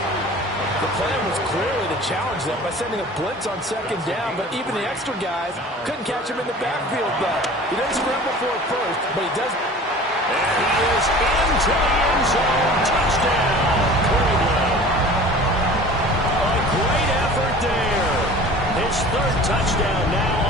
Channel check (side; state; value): both; normal; correlation 0.43